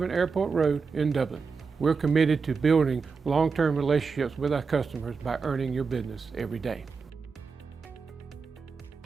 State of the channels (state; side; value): quieter; left; 5.0 dB